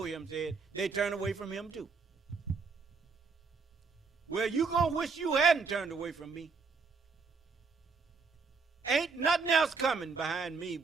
him said, they turn away from him too. Well, you gonna wish you hadn't turned away from me. Ain't nothing else coming behind me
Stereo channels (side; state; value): left; quieter; 4.9 dB